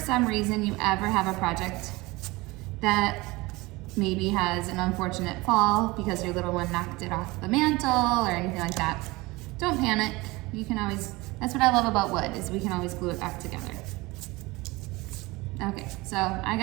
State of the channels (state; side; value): quieter; left; 22.2 dB